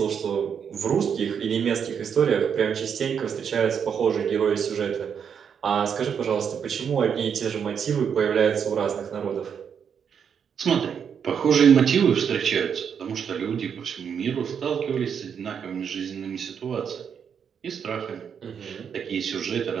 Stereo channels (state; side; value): quieter; left; 7.4 dB